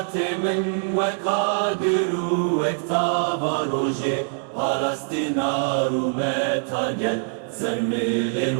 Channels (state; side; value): silent; left; 58 dB below the other